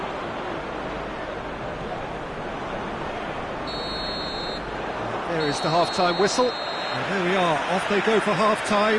There is the half-time whistle. And there we are, off they go for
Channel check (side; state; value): both; identical; correlation 1.00